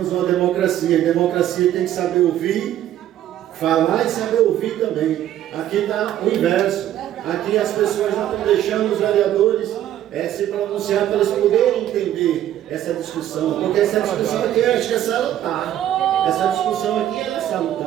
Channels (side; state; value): left; quieter; 11.9 dB